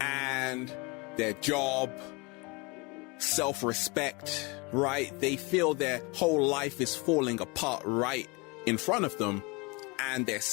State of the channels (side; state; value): right; quieter; 27.9 dB